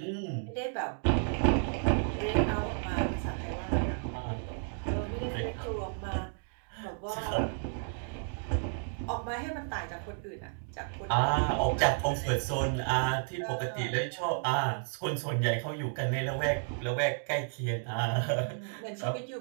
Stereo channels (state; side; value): silent; left; 56 dB below the other